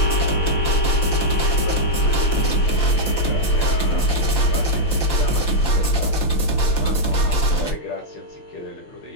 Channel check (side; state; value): right; late; 5.9 ms